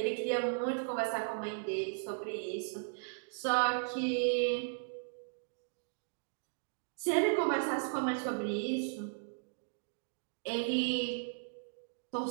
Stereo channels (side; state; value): left; silent; digital silence